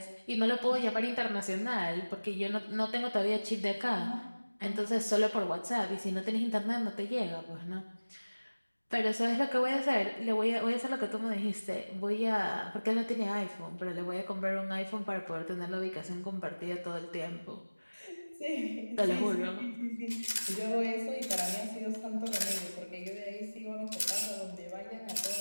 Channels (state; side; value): inverted; both; correlation -1.00